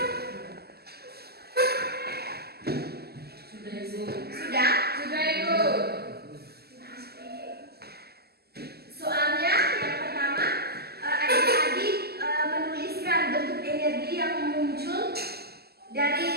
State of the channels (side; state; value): left; late; 0.46 ms